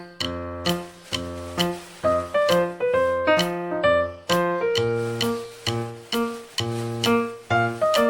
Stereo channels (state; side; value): identical; both; correlation 1.00